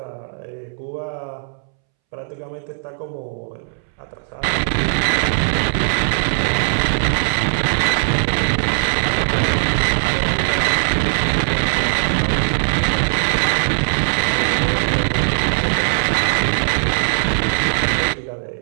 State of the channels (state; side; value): silent; left; 66 dB below the other